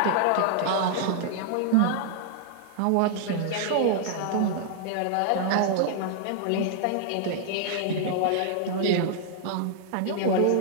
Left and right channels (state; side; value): different; both; correlation -0.01